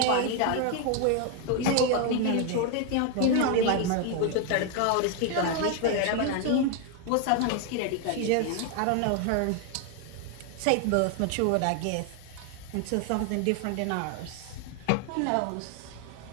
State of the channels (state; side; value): different; both; correlation 0.01